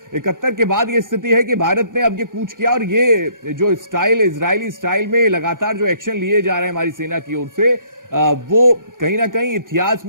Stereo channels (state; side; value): late; left; 0.89 ms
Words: 71 के बाद ये स्थिति है कि भारत ने अब ये कूच किया और ये जो स्टाइल, इजरायली स्टाइल में लगातार जो एक्शन लिए जा रहे हैं हमारी सेना की ओर से, वो कहीं ना कहीं इतिहास